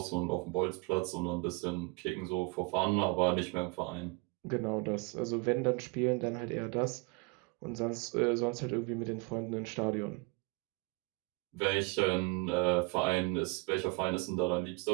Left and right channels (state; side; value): quieter; left; 27.8 dB